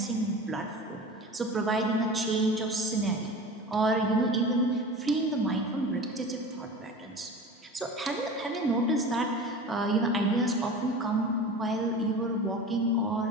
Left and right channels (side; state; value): both; normal; correlation 0.35